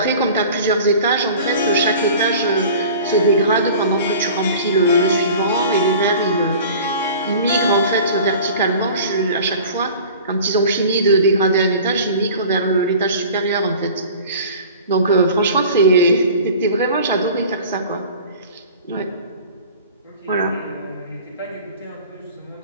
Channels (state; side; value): inverted; both; correlation -0.42